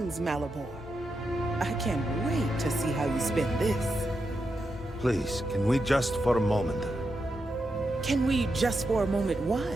Malabor. I can't wait to see how you spend this. Please, can we just for a moment? Can we just for a moment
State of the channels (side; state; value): both; normal; correlation 0.86